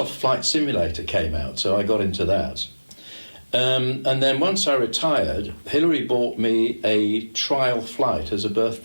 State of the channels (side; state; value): both; inverted; correlation -1.00